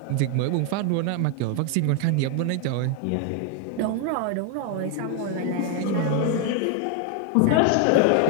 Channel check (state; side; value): different; both; correlation 0.01